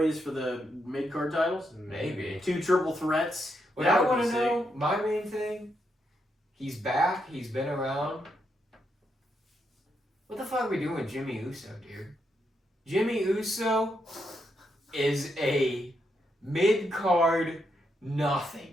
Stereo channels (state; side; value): normal; both; correlation 0.81